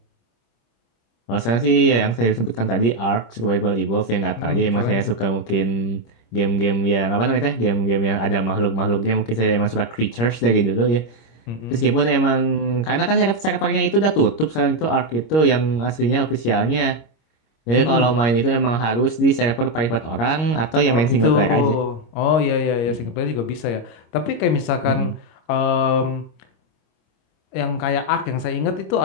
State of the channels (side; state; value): right; late; 26 ms